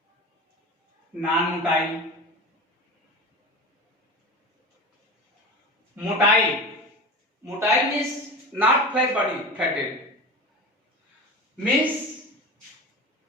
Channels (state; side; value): normal; both; correlation 0.30